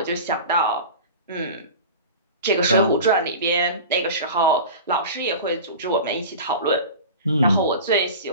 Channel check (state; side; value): inverted; both; correlation -0.34